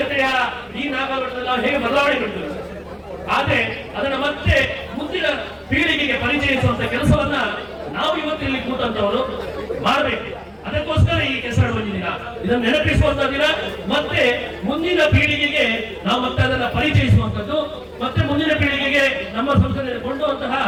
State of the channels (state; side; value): identical; both; correlation 1.00